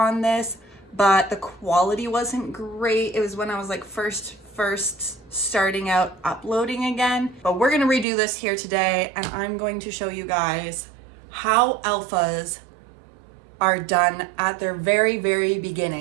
this, but the quality wasn't great. It was when I was like first starting out uploading again. But we're gonna redo this here today, and I'm going to show you guys how alphas are done at their very, very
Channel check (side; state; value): left; drops out; at 8.1 s